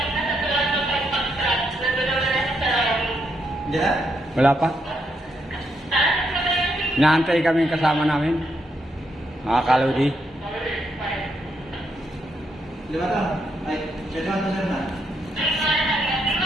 Hindi na? Wala pa. Inaantay kami yung kasama namin. Mga kalodi. Lima to? Ay, siya na, siya na.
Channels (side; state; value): both; normal; correlation 0.79